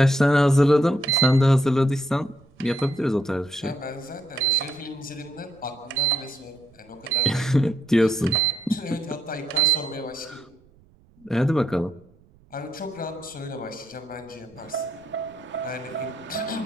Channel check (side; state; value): right; noise; rumble, 29 dB below the sound